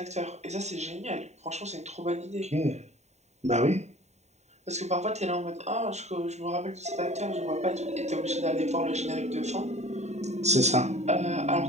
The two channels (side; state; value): left; late; 0.32 ms